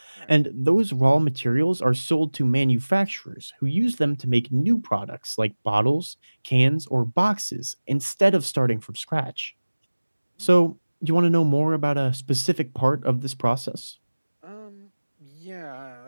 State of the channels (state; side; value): inverted; both; correlation -1.00